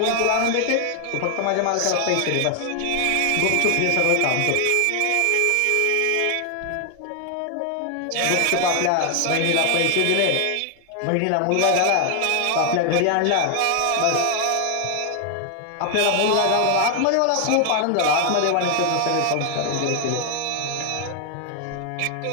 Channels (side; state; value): both; different; correlation 0.00